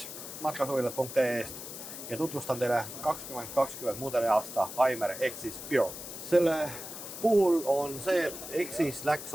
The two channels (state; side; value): noise; left; hiss, 10 dB below the sound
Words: matkasuvilat.ee-st ja tutvustan teile 2020 mudeliaasta Aimer Exis Pure. Selle puhul on see, et Exis läks